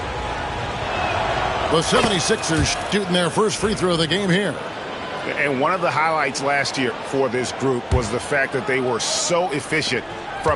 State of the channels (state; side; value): identical; both; correlation 1.00